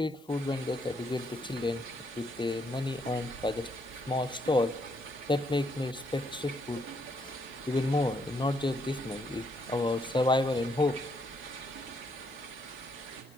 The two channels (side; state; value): left; noise; hiss, 28 dB below the sound